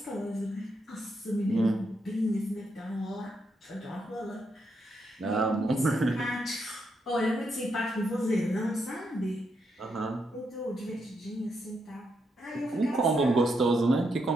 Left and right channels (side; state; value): both; normal; correlation 0.80